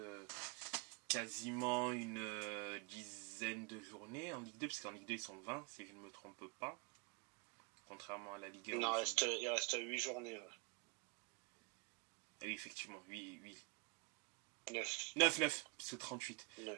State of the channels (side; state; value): left; quieter; 30.2 dB